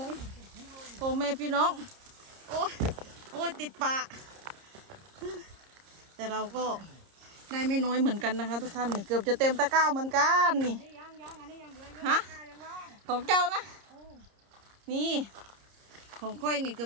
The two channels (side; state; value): left; late; 30 ms